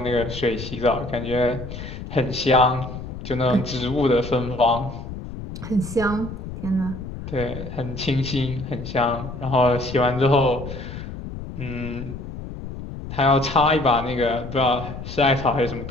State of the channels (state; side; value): noise; left; rumble, 10 dB below the sound